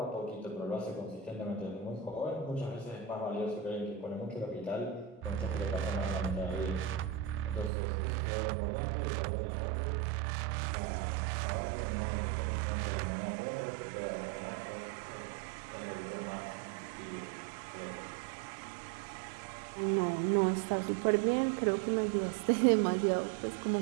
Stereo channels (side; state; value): left; drops out; at 7.7 s